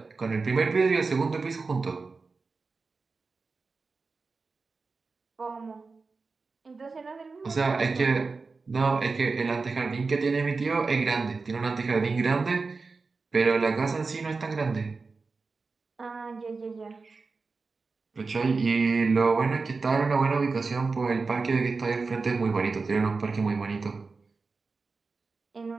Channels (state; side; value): quieter; left; 4.2 dB